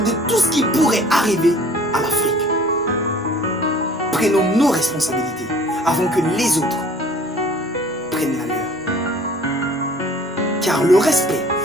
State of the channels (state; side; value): normal; both; correlation 0.51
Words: tout ce qui pourrait arriver à l'Afrique. prenons nos responsabilités avant que les autres prennent la leur. Car le respect